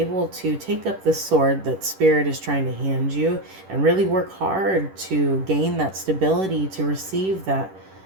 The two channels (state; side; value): late; left; 10 ms